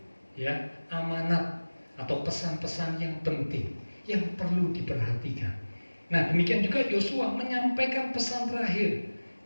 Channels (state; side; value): inverted; both; correlation -1.00